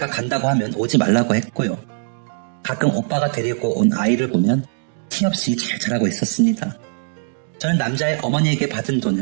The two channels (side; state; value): left; silent; digital silence